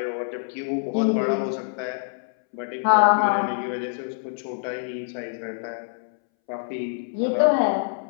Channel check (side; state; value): right; silent; 62 dB below the other